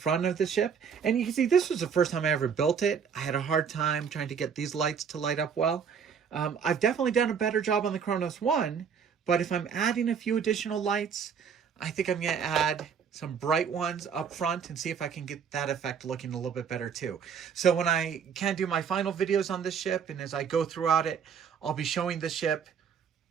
of the ship. And you can see this was the first time I ever built it. I had a hard time trying to get these lights to light up well. I've definitely done a better job on the Kronos One, but if I'm adding a few additional lights, I think I'm going to add some bright ones up front and see if I can get that effect looking a little bit better too. So when I can do my final videos on this ship, and as I go throughout it, I'll be showing the ship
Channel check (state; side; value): quieter; left; 6.9 dB